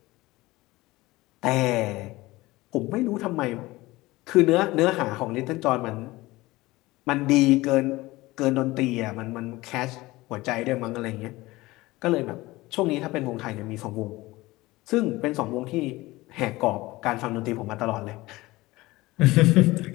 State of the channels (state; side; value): quieter; right; 19.7 dB